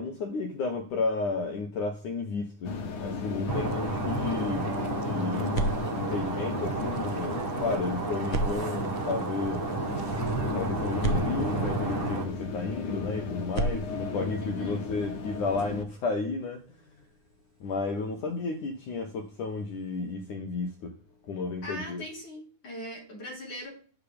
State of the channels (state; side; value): late; right; 9.9 ms